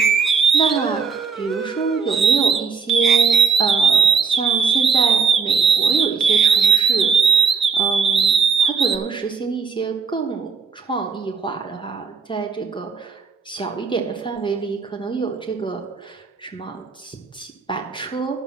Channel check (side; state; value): left; quieter; 5.6 dB